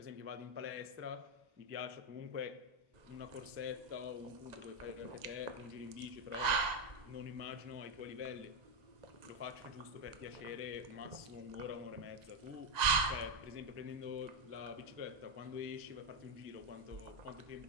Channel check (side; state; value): left; late; 1.9 ms